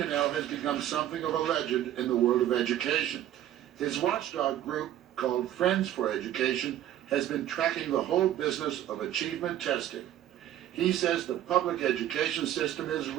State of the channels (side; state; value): left; quieter; 12.1 dB